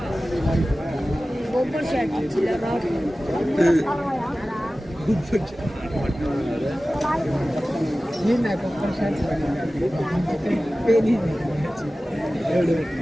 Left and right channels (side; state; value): both; normal; correlation 0.96